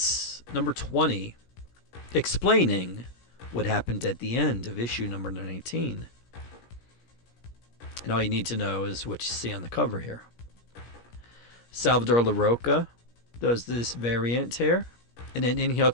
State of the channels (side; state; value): right; late; 17 ms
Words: number 20, explaining what happened at the end of issue number 19. And all you need to know is what you see on the cover here. Salvador LaRocca does this variant here, and then